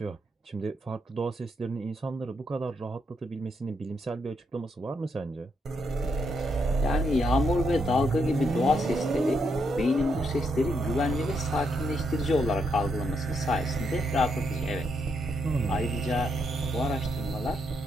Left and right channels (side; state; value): both; normal; correlation 0.79